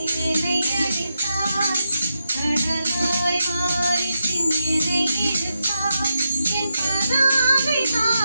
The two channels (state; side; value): inverted; both; correlation -0.85